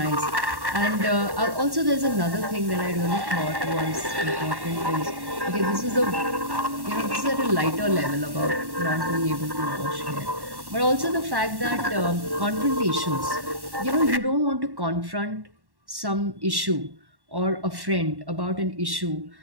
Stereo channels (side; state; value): left; late; 1.1 ms